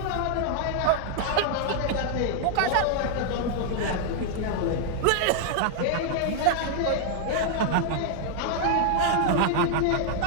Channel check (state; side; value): different; both; correlation -0.01